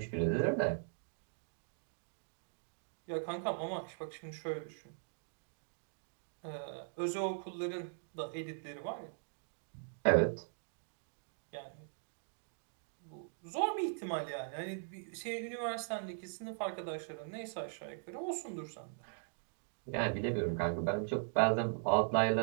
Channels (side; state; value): left; silent; digital silence